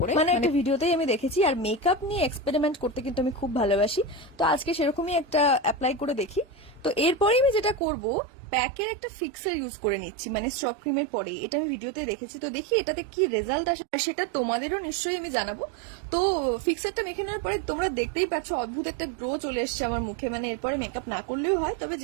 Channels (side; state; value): left; drops out; at 7.8 s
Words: মানে একটা ভিডিওতেই আমি দেখেছি। আর মেকআপ নিয়ে এক্সপেরিমেন্ট করতে কিন্তু আমি খুব ভালোবাসি, তো আজকে সেরকমই একটা অ্যাপ্লাই করে দেখি। তো এরপরে আমি যেটা করব, প্যাকের একটা ফিক্সার ইউজ করে নিচ্ছি, মানে স্ট্রব ক্রিমের পরে। এটা আমি ভিডিওতে দেখেছি, তো দেখি এটাতে কি রেজাল্ট আসে, সেটা তোমাদেরও নিশ্চয়ই আমি জানাবো। তো ফিক্সারটা মেখে নেওয়ার পরে তোমরা দেখতেই পাচ্ছ অদ্ভুত একটা গ্লো চলে এসছে আমার মুখে। মানে এরপরে মেকআপ না করলেও হয়, তবে